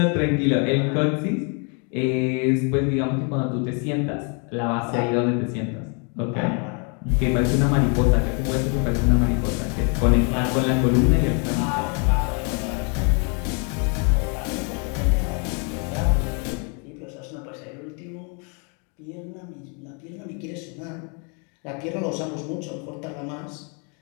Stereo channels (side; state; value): right; quieter; 36.6 dB